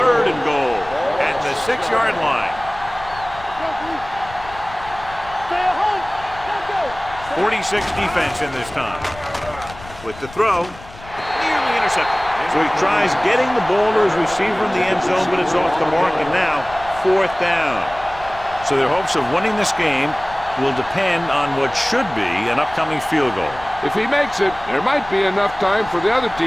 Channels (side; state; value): left; noise; rumble, 18 dB below the sound